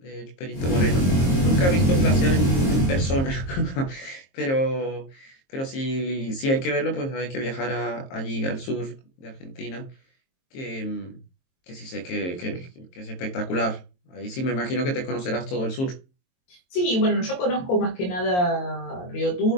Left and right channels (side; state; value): right; late; 22 ms